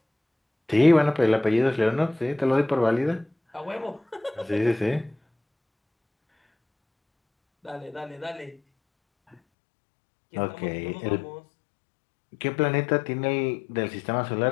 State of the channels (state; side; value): drops out; right; at 9.3 s